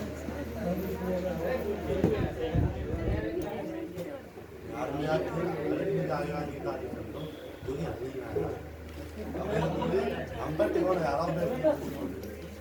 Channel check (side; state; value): both; identical; correlation 1.00